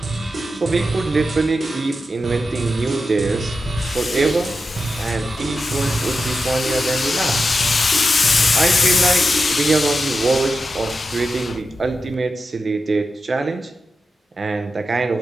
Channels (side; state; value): both; normal; correlation 0.90